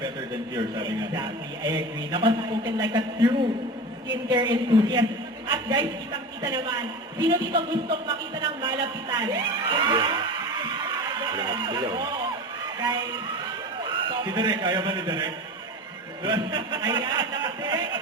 better than cure, sabi nga. Exactly, I agree. Nakaspoken like a true skincare enthusiast. At guys, kitang-kita naman, sino dito gustong makita ng malapitan? Guys, Si Derek, ayaw ba ni Derek? ayan, nakadirect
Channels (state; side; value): normal; both; correlation 0.30